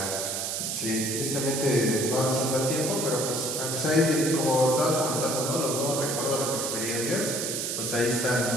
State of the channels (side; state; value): right; noise; hiss, 2 dB below the sound